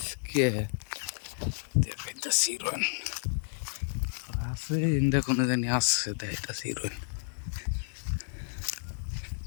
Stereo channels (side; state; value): right; silent; digital silence